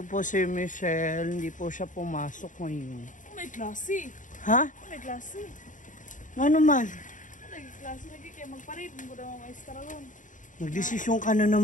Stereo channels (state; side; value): late; right; 0.37 ms